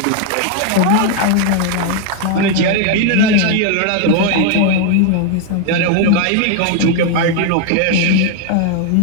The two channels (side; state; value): both; different; correlation 0.01